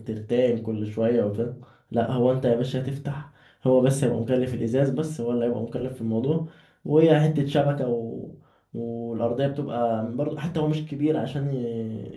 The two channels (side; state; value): both; identical; correlation 1.00